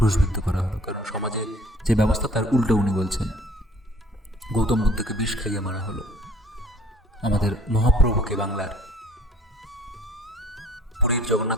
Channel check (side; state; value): both; normal; correlation 0.54